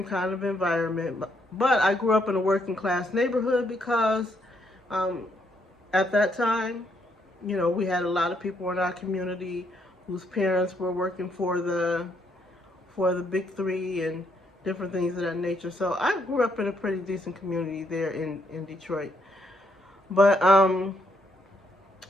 kind of environment. But I grew up in a working class neighborhood because um, at that time, we had a lot of people in our community whose parents were working for the big three and different things of that nature. So I grew up in a pretty decent community there in Detroit. But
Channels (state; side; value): normal; both; correlation 0.73